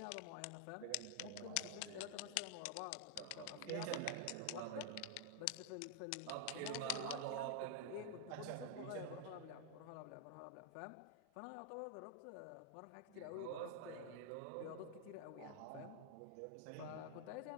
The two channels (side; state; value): both; different; correlation 0.00